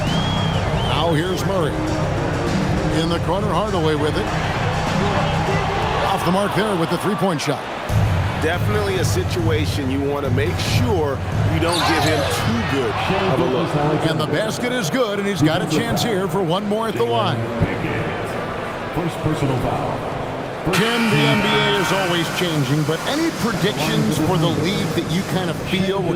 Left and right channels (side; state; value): both; identical; correlation 1.00